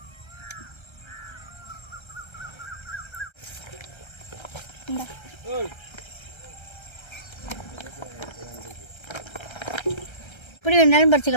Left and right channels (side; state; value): right; late; 1.3 ms